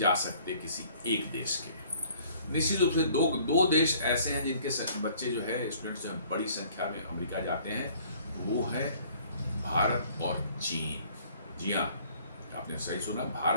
सकते किसी एक देश के। निश्चित रूप से दो देश ऐसे हैं जिनके बच्चे जो है स्टूडेंट्स जो है बड़ी संख्या में अमेरिका जाते हैं, वो है भारत और चीन। जी हाँ, आपने सही सुना,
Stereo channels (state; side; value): inverted; both; correlation -0.57